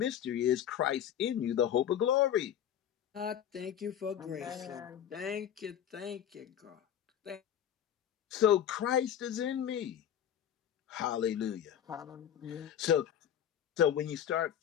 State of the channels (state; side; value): quieter; right; 9.8 dB